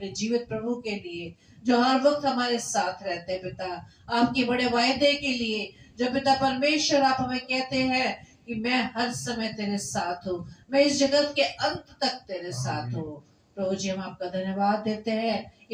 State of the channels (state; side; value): identical; both; correlation 1.00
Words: जीवित प्रभु के लिए जो हर वक्त हमारे साथ रहते हैं। पिता आपके बड़े वायदे के लिए जो पिता परमेश्वर आप हमें कहते हैं कि मैं हर समय तेरे साथ हूँ, मैं इस जगत के अंत तक तेरे साथ हूँ। प्रभु जी हम आपका धन्यवाद देते हैं